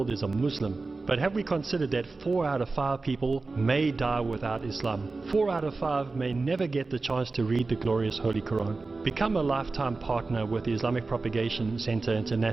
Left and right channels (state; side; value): quieter; left; 3.7 dB